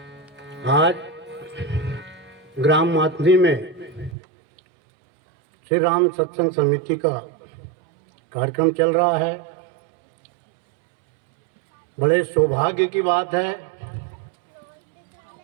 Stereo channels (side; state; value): left; drops out; at 4.2 s